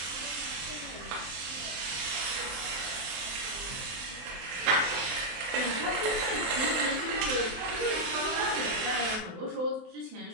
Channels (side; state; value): left; late; 23 ms